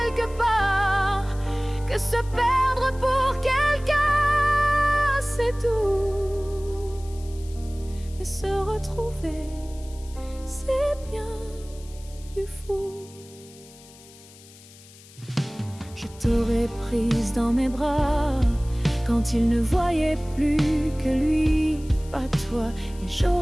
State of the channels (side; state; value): left; noise; hiss, 22 dB below the sound